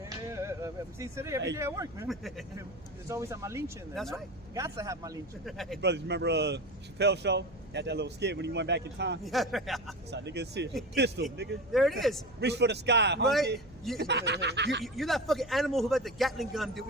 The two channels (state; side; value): noise; right; hum, 25 dB below the sound